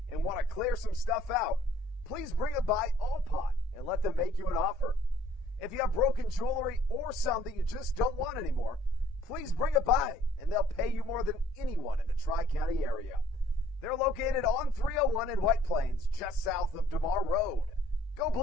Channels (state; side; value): normal; both; correlation 0.60